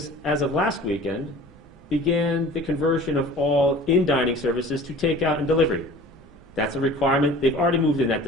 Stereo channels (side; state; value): both; normal; correlation 0.44